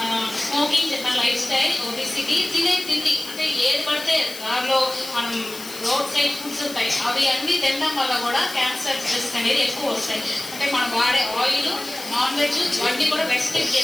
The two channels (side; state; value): left; noise; hiss, 13 dB below the sound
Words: స్మోకింగ్ చెప్పిన లైఫ్ స్టైల్, ఒబిసిటీ, తినే తిండి అంటే ఏది పడితే దానిలో మనం రోడ్ సైడ్ ఫుడ్స్ ఉంటాయి, అవి అన్నీ తినడం వల్ల కూడా క్యాన్సర్ రిస్క్ అనేది ఎక్కువ వస్తాయి. అంటే మనం వాడే ఆయిల్, నాన్ వెజ్ ఇవన్నీ కూడా రెస్ట్రిక్ట్